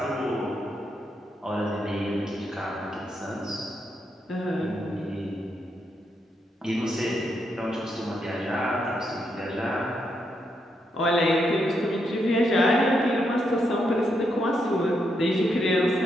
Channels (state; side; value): normal; both; correlation 0.80